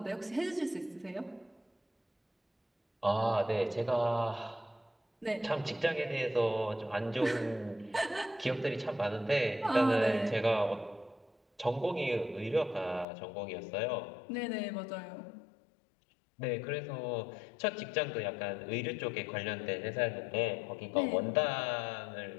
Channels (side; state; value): right; drops out; at 13.1 s